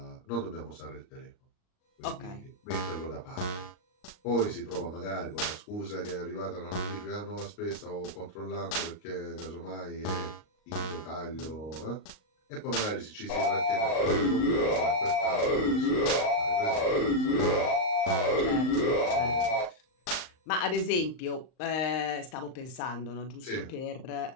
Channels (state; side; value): late; right; 38 ms